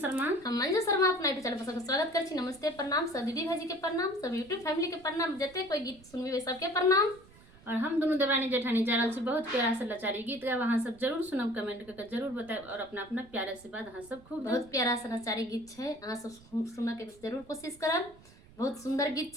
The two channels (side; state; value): right; noise; rumble, 24 dB below the sound